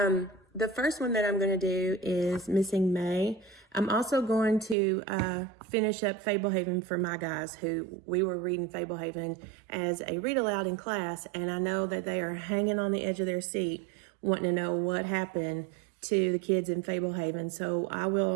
The first one that I'm going to do is Missing May. I'm also going to finish up Fablehaven for my guys who we were reading Fablehaven as a read aloud in class, and I know that they are hanging on the edge of their seat wanting to know what happened to the kids in Fablehaven. So I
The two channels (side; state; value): left; drops out; at 4.8 s